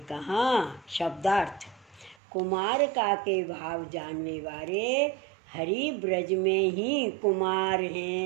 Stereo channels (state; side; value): drops out; left; at 2.1 s